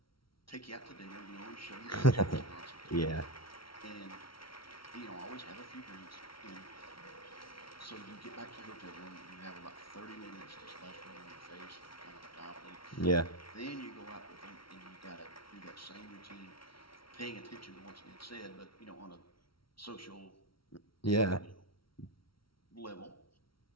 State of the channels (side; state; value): right; late; 0.74 ms